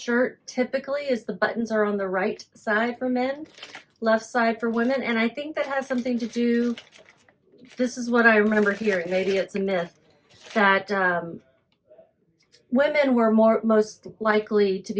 typically is the buttons are on the right side for men, left side for women. And I think that has something to do, this is what I remember hearing, maybe it's a myth, that women were most likely to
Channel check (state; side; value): identical; both; correlation 1.00